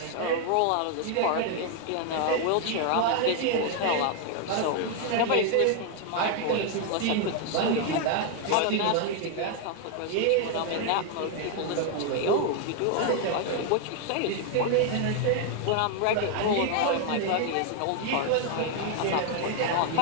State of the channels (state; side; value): different; both; correlation 0.00